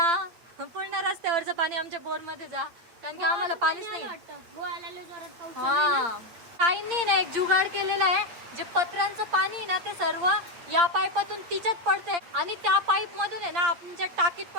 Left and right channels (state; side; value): late; left; 8.6 ms